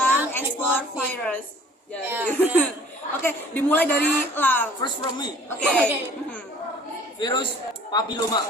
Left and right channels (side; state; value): both; normal; correlation 0.52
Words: ekspor virus. Ya, Oke, dimulai dari Lang. First from me. Oke. Virus papiloma.